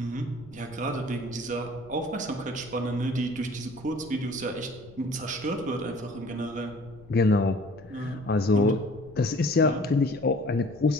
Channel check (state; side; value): noise; left; rumble, 21 dB below the sound